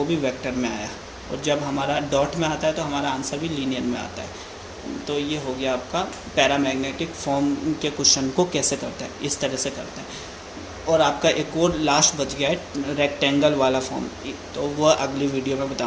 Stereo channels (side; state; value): both; identical; correlation 1.00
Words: भी वेक्टर में आया, और जब हमारा डॉट में आता है तो हमारा आंसर भी लीनियर में आता है। तो ये हो गया आपका पैरामैग्नेटिक फॉर्म के क्वेश्चन को कैसे करते हैं, इस तरह से करते हैं। और आपका एक और लास्ट बच गया है रेक्टेंगल वाला फॉर्म, तो वह अगली वीडियो में